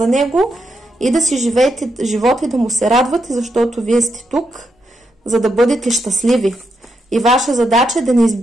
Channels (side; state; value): both; normal; correlation 0.82